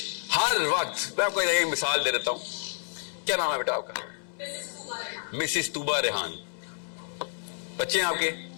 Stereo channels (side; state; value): right; silent; 59 dB below the other